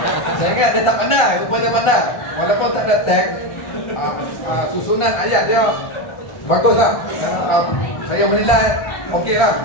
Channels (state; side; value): late; right; 1.4 ms